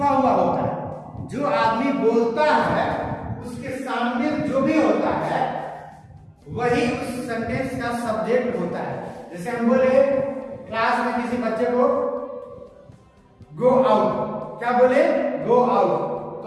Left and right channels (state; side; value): identical; both; correlation 1.00